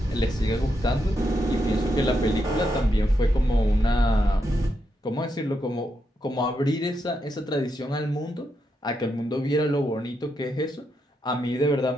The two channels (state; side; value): normal; both; correlation 0.82